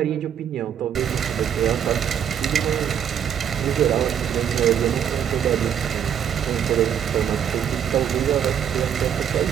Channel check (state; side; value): quieter; left; 8.9 dB